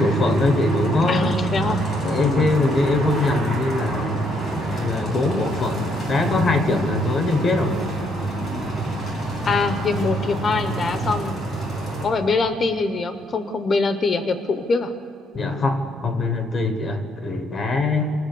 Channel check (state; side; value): normal; both; correlation 0.72